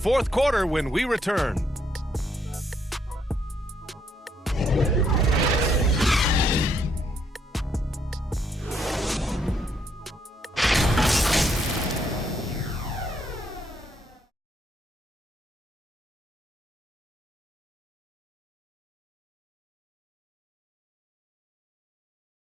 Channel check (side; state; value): both; normal; correlation 0.72